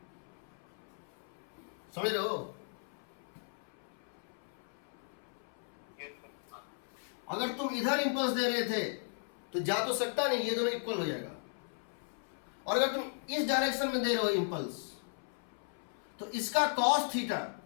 समझ रहे हो? अगर तुम इधर इंपल्स दे रहे थे तो जा तो सकता नहीं, ये दोनों इक्वल हो जाएगा। और अगर तुम इस डायरेक्शन में दे रहे हो इंपल्स तो इसका cos थीटा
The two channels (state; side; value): silent; right; 53 dB below the other